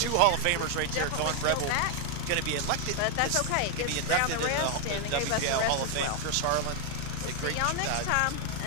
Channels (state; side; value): different; both; correlation 0.00